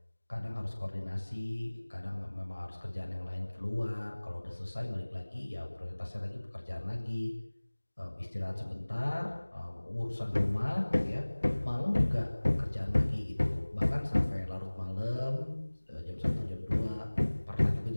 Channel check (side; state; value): both; inverted; correlation -1.00